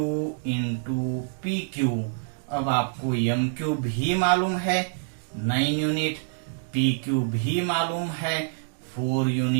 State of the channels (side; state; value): left; silent; digital silence